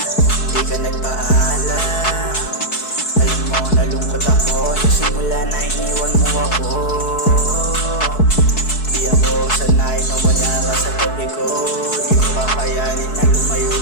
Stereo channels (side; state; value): right; late; 4.6 ms